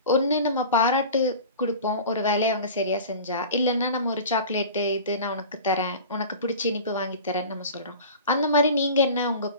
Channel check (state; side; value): inverted; both; correlation -0.37